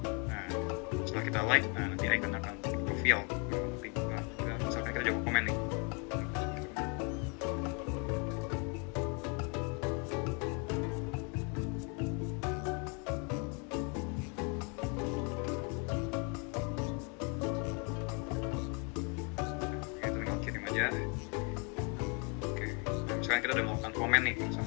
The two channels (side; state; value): right; quieter; 34.5 dB